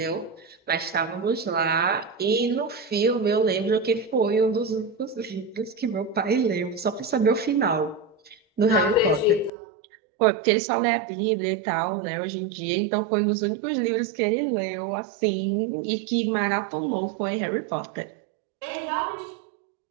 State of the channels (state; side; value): drops out; left; at 9.5 s